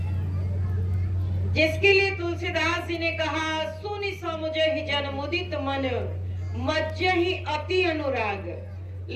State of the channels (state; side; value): identical; both; correlation 1.00